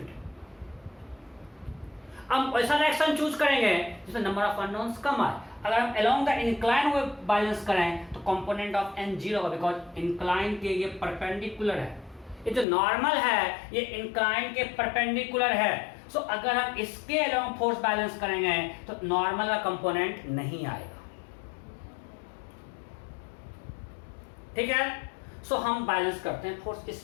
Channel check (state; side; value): drops out; right; at 12.7 s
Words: है. हम ऐसा डायरेक्शन चूज करेंगे जिसमें नंबर ऑफ अननोन्स कम आए. अगर हम along the incline way balance करें तो कंपोनेंट ऑफ एन 0 होगा, बिकॉज इंक्लाइन के ये परपेंडिकुलर है. ये जो नॉर्मल है ये इंक्लाइन के परपेंडिकुलर है. सो अगर हम इसके अलोंग फोर्स बैलेंस करेंगे तो नॉर्मल का कंपोनेंट नहीं आएगा. ठीक है? सो हम बैलेंस करते हैं फोर्स